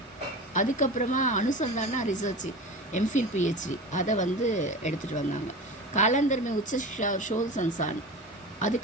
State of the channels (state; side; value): normal; both; correlation 0.31